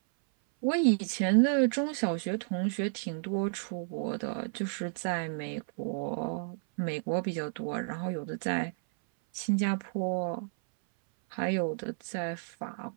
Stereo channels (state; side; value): silent; left; 57 dB below the other